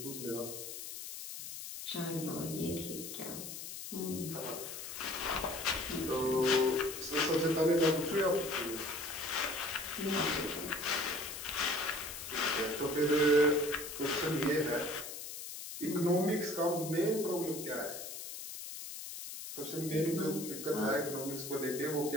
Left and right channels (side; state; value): left; noise; hiss, 9 dB below the sound